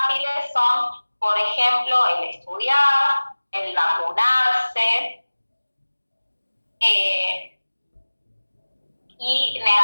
son, por ejemplo, el estudiar, el vacunarse, Y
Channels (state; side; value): inverted; both; correlation -1.00